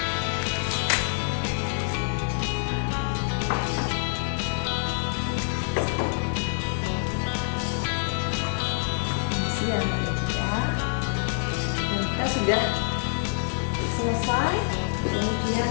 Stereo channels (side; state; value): right; silent; digital silence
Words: Kita sudah selesai, kemudian